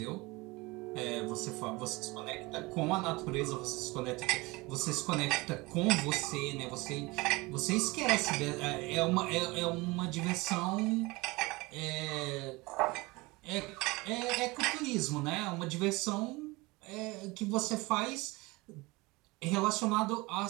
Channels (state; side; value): quieter; left; 23.4 dB